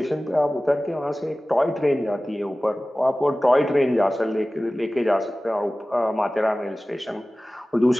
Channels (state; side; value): normal; both; correlation 0.97